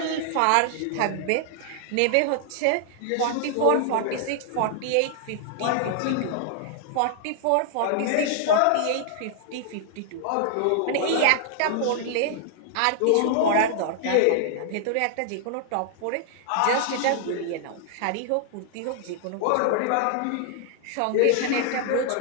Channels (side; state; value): both; different; correlation -0.01